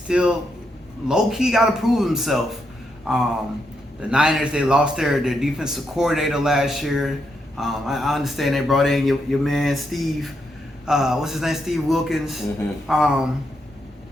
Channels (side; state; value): both; normal; correlation 0.81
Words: low key got to prove himself. The Niners, they lost their defensive coordinator last year. I understand they brought in your man Steve. What's his name? Steve Wilkins.